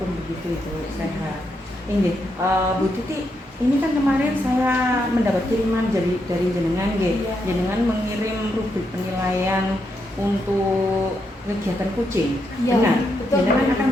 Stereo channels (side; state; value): both; normal; correlation 0.80